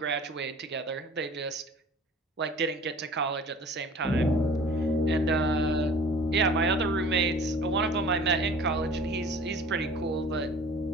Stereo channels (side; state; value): both; normal; correlation 0.46